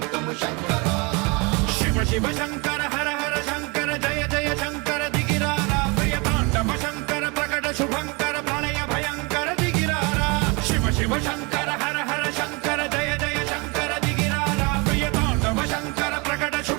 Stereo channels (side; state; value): left; quieter; 29.2 dB